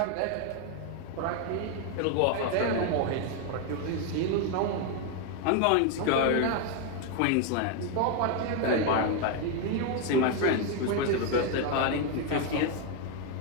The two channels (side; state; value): both; different; correlation 0.01